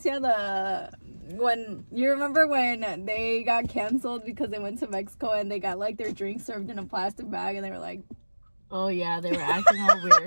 When you remember when they got canceled because they went to Mexico and they got like their drinks served in a plastic bag and they were like, oh yeah, they were acting all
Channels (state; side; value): inverted; both; correlation -1.00